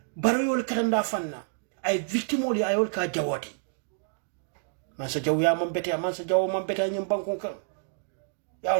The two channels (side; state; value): left; silent; digital silence